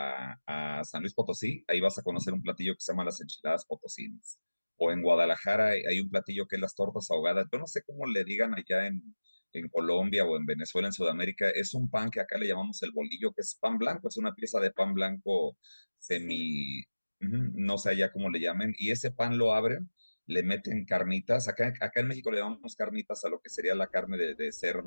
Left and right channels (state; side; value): inverted; both; correlation -1.00